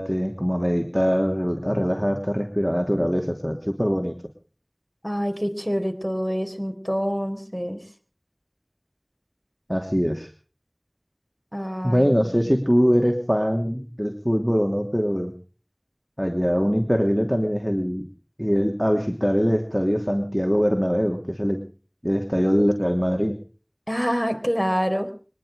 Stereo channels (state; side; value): identical; both; correlation 1.00